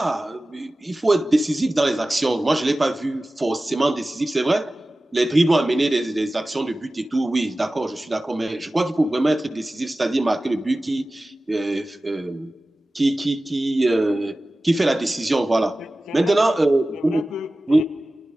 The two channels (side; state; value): both; normal; correlation 0.96